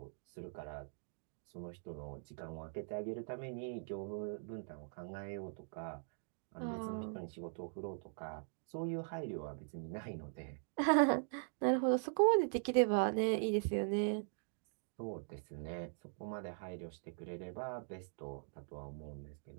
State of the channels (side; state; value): left; silent; digital silence